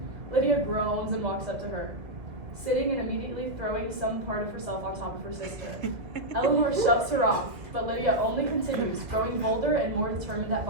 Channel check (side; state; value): left; late; 1.8 ms